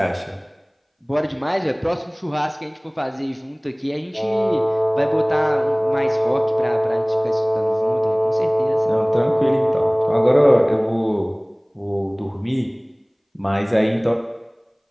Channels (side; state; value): both; identical; correlation 1.00